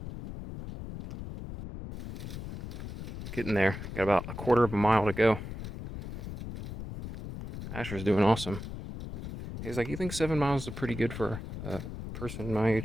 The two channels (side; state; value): left; noise; rumble, 9 dB below the sound